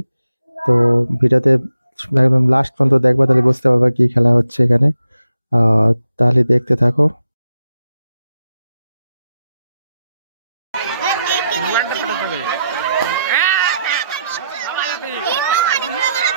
তো ভিডিওতে একদম লাস্ট পর্যন্ত দেখবা, তাহলে বুঝতে পারবা কি খেলা হচ্ছে এখানে। তাহলে দেখতে থাকো।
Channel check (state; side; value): inverted; both; correlation -0.84